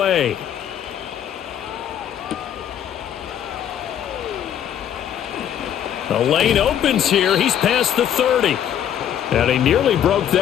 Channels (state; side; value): quieter; right; 9.9 dB